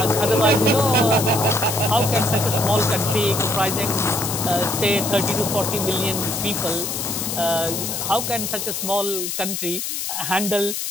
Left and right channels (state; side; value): noise; left; hiss, 3 dB below the sound